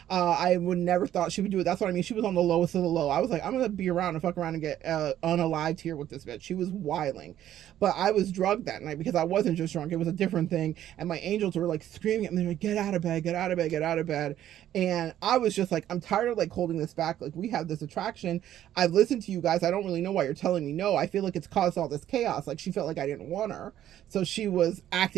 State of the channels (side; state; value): left; quieter; 11.8 dB